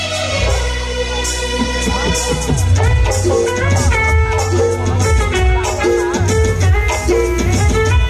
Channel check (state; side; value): identical; both; correlation 1.00